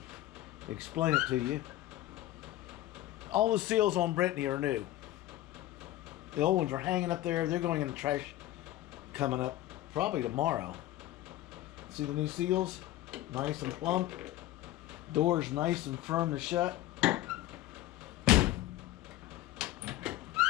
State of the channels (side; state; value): right; quieter; 14.9 dB